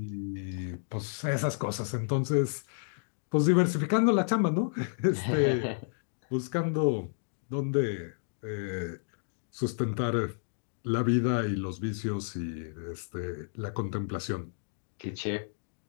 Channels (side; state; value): right; silent; digital silence